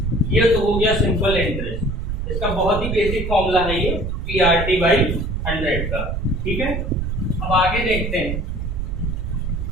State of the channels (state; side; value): noise; right; rumble, 3 dB below the sound